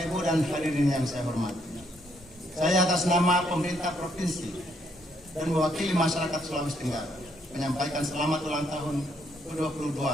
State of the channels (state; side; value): normal; both; correlation 0.72